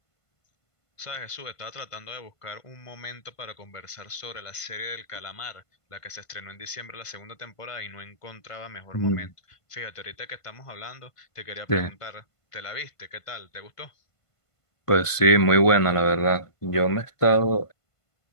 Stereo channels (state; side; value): late; right; 1.5 ms